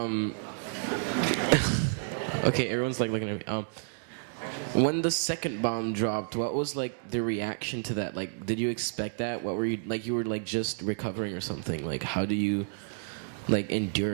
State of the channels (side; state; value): left; silent; digital silence